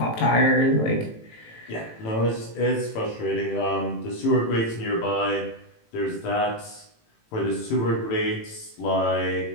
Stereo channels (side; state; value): right; late; 18 ms